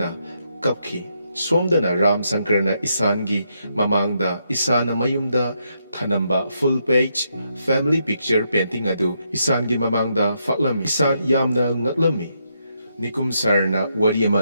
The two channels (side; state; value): both; inverted; correlation -0.79